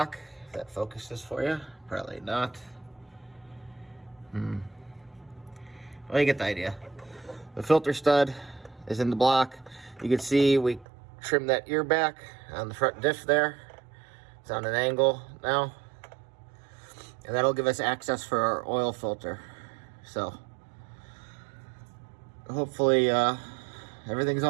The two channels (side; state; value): left; drops out; at 10.9 s